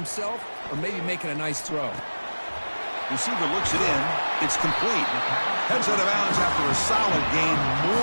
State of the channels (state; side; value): inverted; both; correlation -1.00